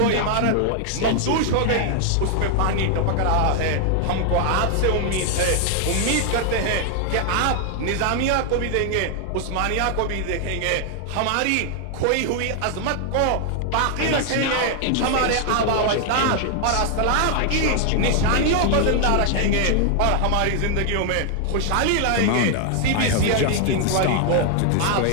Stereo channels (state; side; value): different; both; correlation 0.00